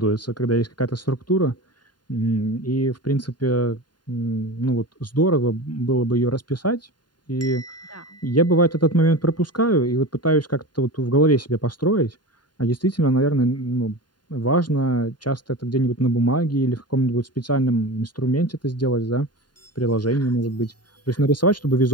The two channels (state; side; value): late; right; 0.70 ms